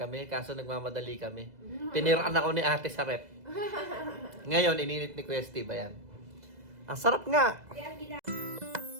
kaso nagmamadali kami. Tiniraan ako ni ate sa rep. Ngayon, ininit ni Kuya Steve, ayan. Ang sarap nga! Kaya ang gina...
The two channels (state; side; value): late; left; 2.0 ms